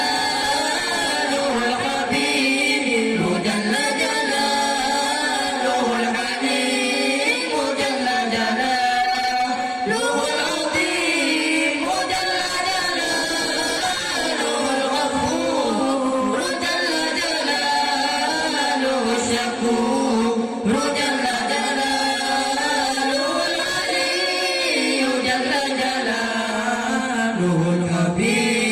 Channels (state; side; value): identical; both; correlation 1.00